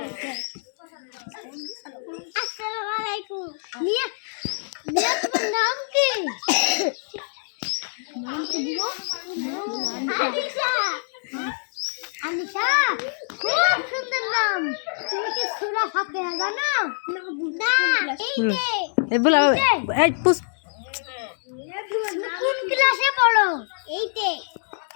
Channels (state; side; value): silent; right; digital silence